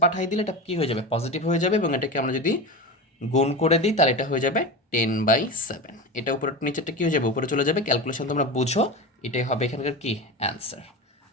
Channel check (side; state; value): both; normal; correlation 0.25